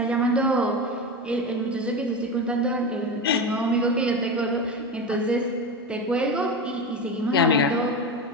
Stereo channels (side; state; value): both; normal; correlation 0.21